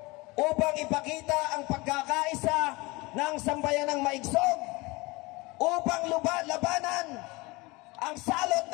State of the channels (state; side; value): quieter; right; 24.1 dB